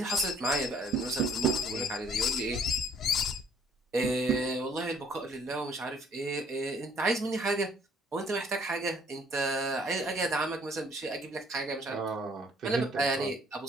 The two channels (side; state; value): both; normal; correlation 0.60